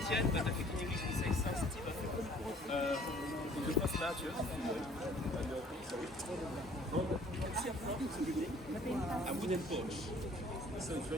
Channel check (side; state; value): both; normal; correlation 0.55